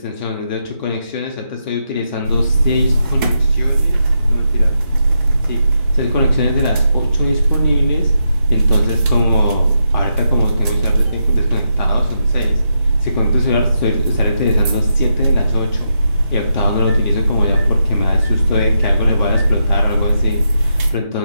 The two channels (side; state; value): both; inverted; correlation -0.83